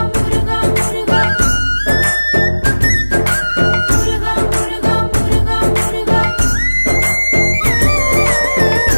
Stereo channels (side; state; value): both; inverted; correlation -1.00